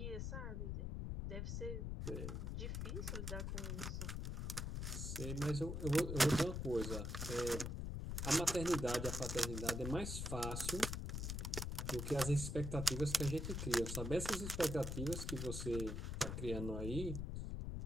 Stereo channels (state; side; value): noise; left; rumble, 3 dB below the sound